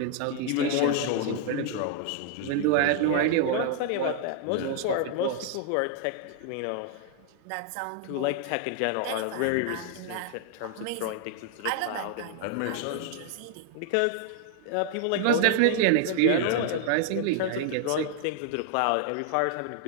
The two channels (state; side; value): different; both; correlation 0.00